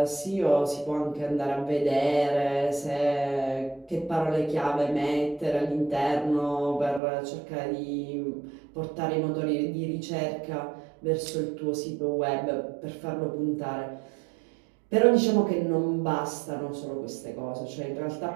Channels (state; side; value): drops out; left; at 7.0 s